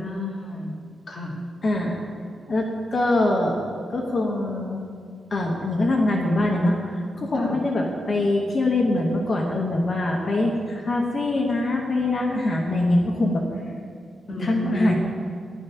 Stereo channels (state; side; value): normal; both; correlation 0.87